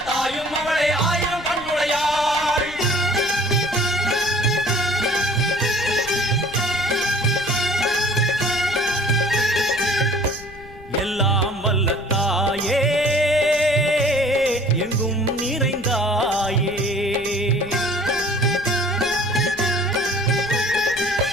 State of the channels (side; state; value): left; noise; rumble, 19 dB below the sound